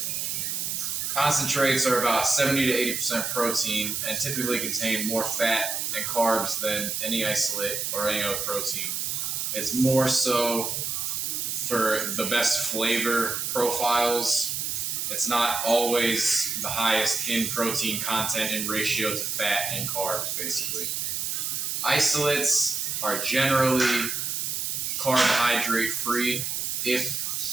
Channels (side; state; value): right; noise; hiss, 2 dB below the sound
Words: Concentrates are about 70 to 80% protein and typically contain more fat and carbs than any isolate or any other protein. It's more so for the best flavor profiles. It's not always the highest in protein content in ratio to fat and carbs, basically. Isolates are generally carbohydrate free. If